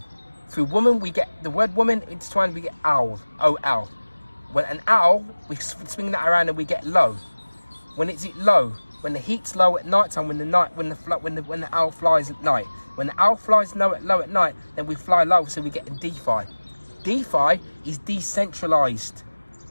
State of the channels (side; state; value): both; inverted; correlation -1.00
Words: Through woman we get the word woman intertwined. We get owl. O-L. When an owl, we swing that around and we get low. When it's low, when the heat's low at night time, when the owl flies at night. When the owl flies low at night, then we fly low, so we get DeFi. DeFi is decentralized